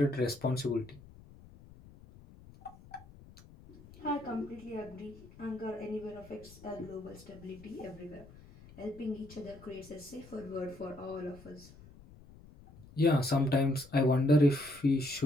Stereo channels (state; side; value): noise; left; rumble, 21 dB below the sound